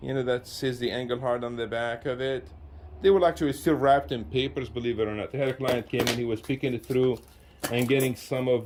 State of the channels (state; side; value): identical; both; correlation 1.00